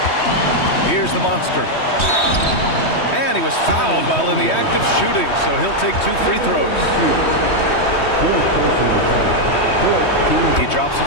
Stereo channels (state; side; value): late; right; 3.2 ms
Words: Here's the monster. And he was fouled while in the act of shooting, so he'll take 2 free throws. He drops the